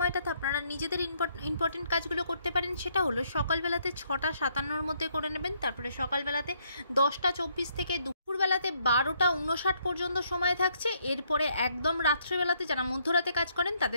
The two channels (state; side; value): inverted; both; correlation -0.71